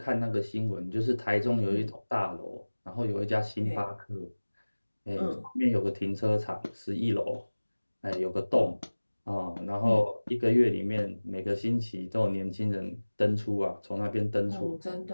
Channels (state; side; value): inverted; both; correlation -1.00